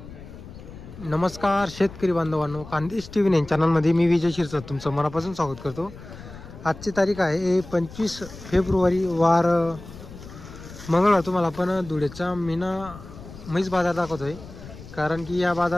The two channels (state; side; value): noise; left; rumble, 16 dB below the sound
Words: नमस्कार शेतकरी बांधवांनो, खानदेश टीव्ही 9 चॅनलमध्ये मी विजय शिरसाट तुमचं मनापासून स्वागत करतो। आजची तारीख आहे 25 फेब्रुवारी वार मंगळवार। तुम्हाला आपण धुळेचा मीना म्हैस बाजार दाखवतोय, कारण की या